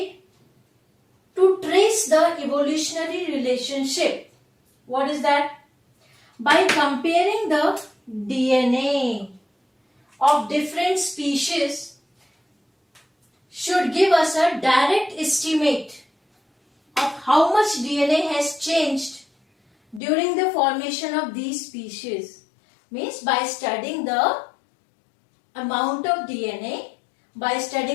to trace the evolutionary relationship. What is that? By comparing the DNA of different species should give us a direct estimate of how much DNA has changed during the formation of these species. Means by studying the amount of DNA, by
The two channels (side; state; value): right; drops out; at 20.0 s